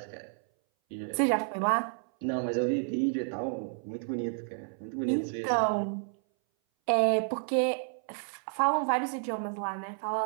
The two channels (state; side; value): silent; left; 57 dB below the other